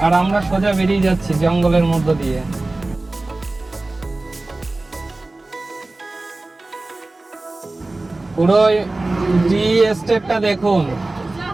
আর আমরা সোজা বেরিয়ে যাচ্ছি জঙ্গলের মধ্য দিয়ে। পুরো টি এস্টেটটা দেখুন,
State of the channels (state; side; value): quieter; left; 3.0 dB